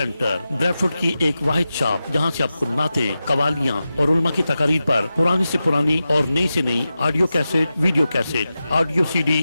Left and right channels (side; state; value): both; inverted; correlation -0.92